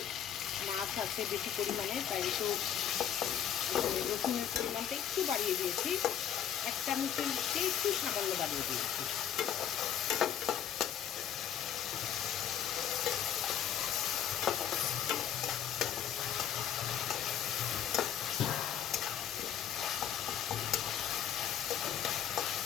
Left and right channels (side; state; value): right; quieter; 9.7 dB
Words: মাছ আছে বেশি পরিমাণে, তাই একটু রসুনের পরিমাণটা একটু বাড়িয়ে দিয়েছি, 1 চামচের চেয়ে একটু সামান্য বাড়িয়ে দিয়েছি।